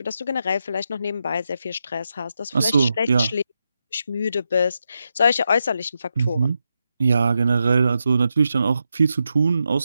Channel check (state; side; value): inverted; both; correlation -0.86